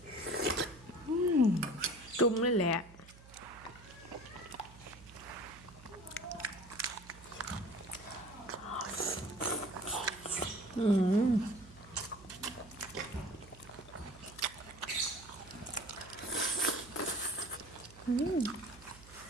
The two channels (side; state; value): right; noise; hum, 20 dB below the sound